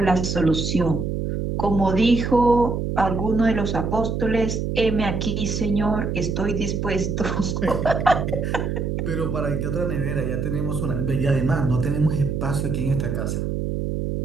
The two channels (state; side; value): noise; right; hum, 2 dB below the sound